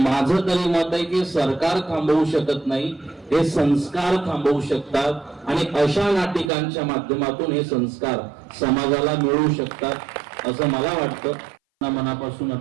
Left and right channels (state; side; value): drops out; left; at 6.5 s